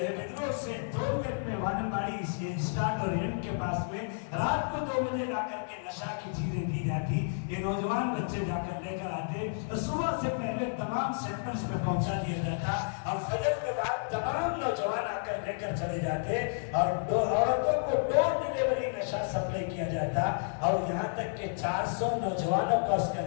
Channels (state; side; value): silent; right; digital silence